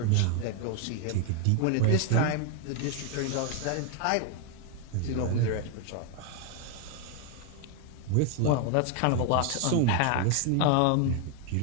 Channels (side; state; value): both; different; correlation 0.01